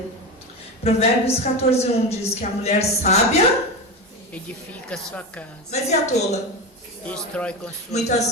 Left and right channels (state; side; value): normal; both; correlation 0.20